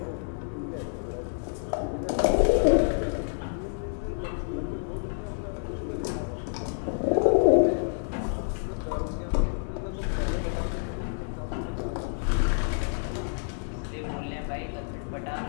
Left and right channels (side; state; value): right; silent; digital silence